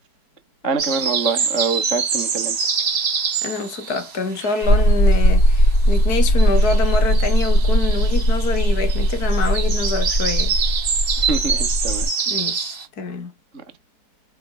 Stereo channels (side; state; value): right; late; 4.6 ms